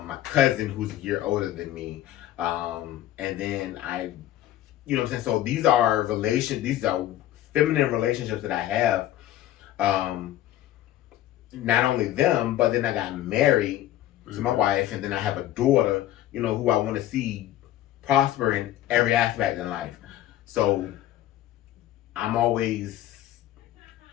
cousin who's a year older than me, and then you know what I'm saying. So these are feminine relationships that I have. Not only them, but then I got married to my wife, and then I have a daughter, who I want to see prosper in every aspect in life. So I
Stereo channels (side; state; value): right; quieter; 13.5 dB